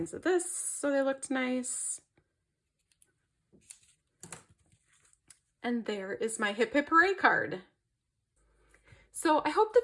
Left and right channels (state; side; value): identical; both; correlation 1.00